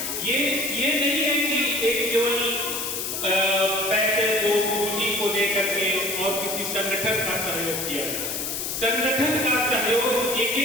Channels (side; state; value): left; noise; hiss, 3 dB below the sound